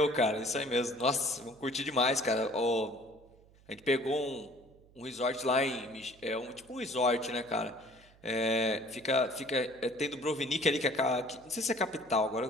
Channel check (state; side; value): noise; right; hum, 27 dB below the sound